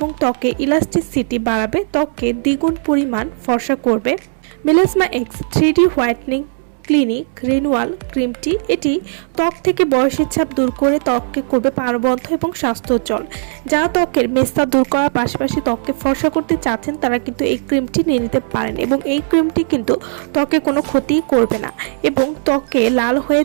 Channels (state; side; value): silent; left; digital silence